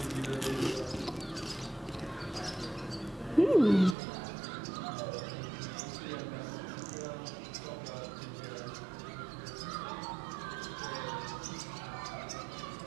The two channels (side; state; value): left; drops out; at 4.0 s